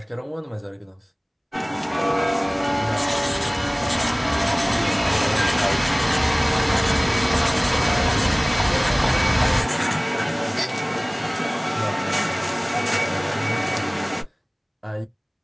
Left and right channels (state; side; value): identical; both; correlation 1.00